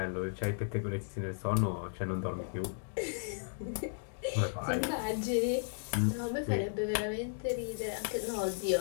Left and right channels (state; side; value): silent; right; digital silence